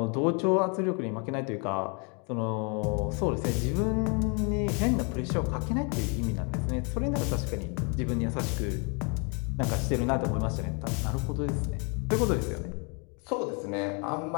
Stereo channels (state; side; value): quieter; right; 34.9 dB